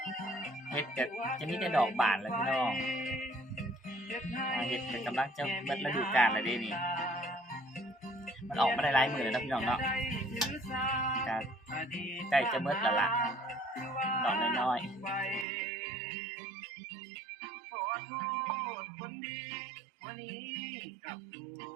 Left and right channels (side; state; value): left; drops out; at 15.5 s